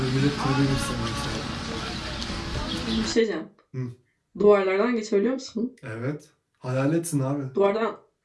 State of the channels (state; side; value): identical; both; correlation 1.00